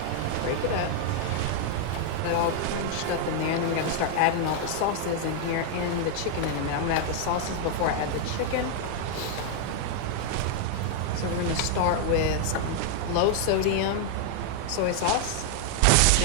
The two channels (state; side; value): different; both; correlation 0.00